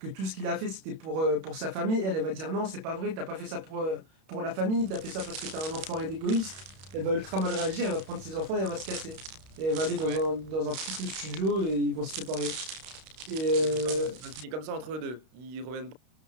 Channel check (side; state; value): left; late; 32 ms